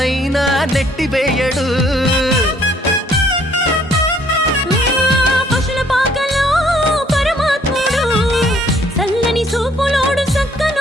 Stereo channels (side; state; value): both; normal; correlation 0.63